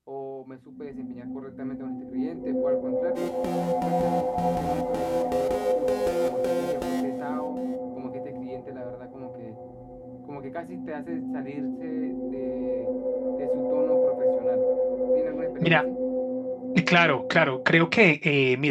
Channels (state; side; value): identical; both; correlation 1.00